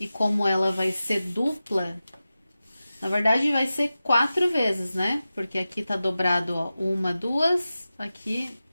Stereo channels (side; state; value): both; inverted; correlation -0.94